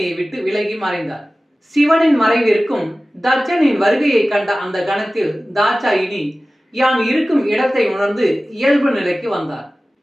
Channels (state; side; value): normal; both; correlation 0.96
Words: விட்டு விலகி மறைந்தார். சிவனின் மறைவிற்கும் தட்சனின் வருகையை கண்ட அந்த கணத்தில் தாட்சாயினி யான் இருக்கும் இடத்தை உணர்ந்து இயல்பு நிலைக்கு வந்தார்.